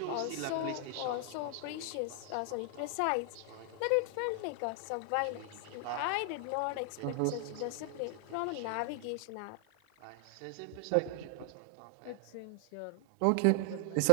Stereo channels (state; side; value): different; both; correlation 0.00